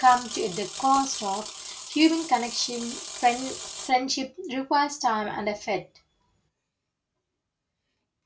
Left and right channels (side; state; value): both; identical; correlation 1.00